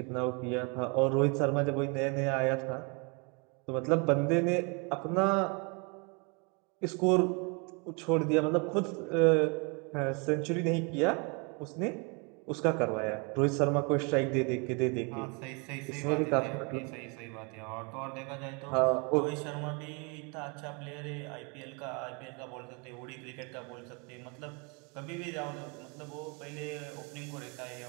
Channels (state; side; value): quieter; left; 32.7 dB